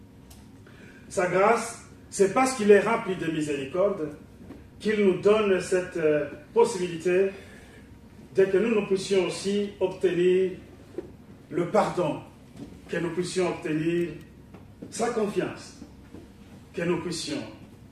Sa grâce, c'est parce qu'il est rempli de miséricorde qu'il nous donne cette possibilité de que nous puissions aussi obtenir le pardon, que nous puissions obtenir sa confiance, que nous puissions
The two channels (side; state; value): both; identical; correlation 1.00